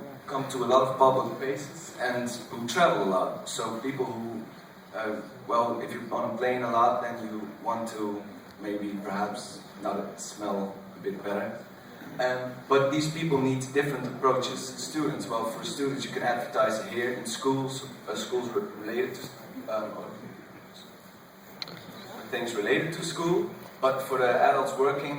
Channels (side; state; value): both; identical; correlation 1.00